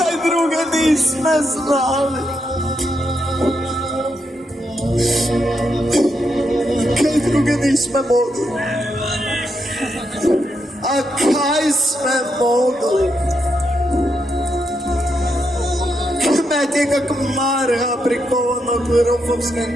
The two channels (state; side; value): normal; both; correlation 0.81